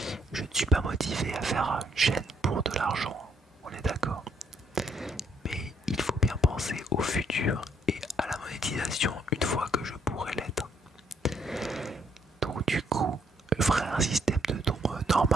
Je ne suis pas motivé à faire une chaîne pour de l'argent, on est d'accord. Mais il faut bien penser au futur et à la monétisation une fois que je pourrai l'être. Donc du coup, je ferai un système de dons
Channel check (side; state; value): both; normal; correlation 0.70